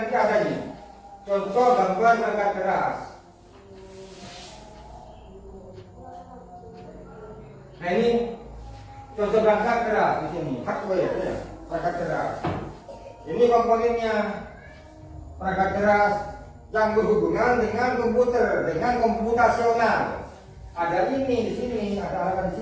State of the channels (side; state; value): both; identical; correlation 1.00